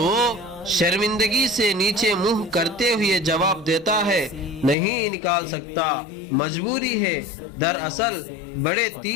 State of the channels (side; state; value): right; drops out; at 4.8 s